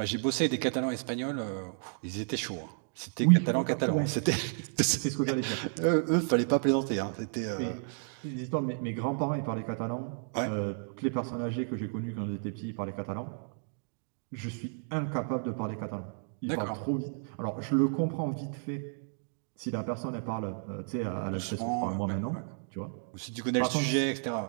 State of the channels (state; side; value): silent; left; digital silence